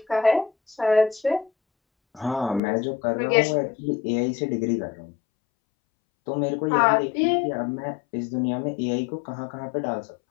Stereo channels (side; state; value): right; drops out; at 2.6 s